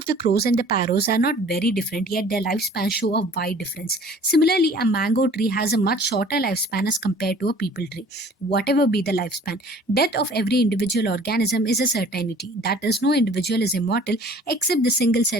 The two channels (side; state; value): both; normal; correlation 0.50